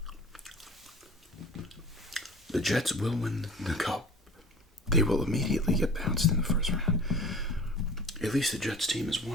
The Jets will win the Cup. They will immediately get bounced in the first round. At least the Jets team has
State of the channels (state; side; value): normal; both; correlation 0.42